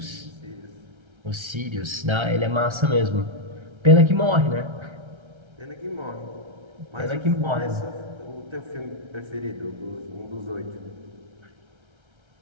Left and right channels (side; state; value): left; late; 1.3 ms